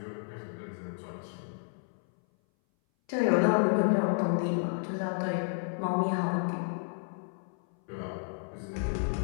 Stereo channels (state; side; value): silent; right; 57 dB below the other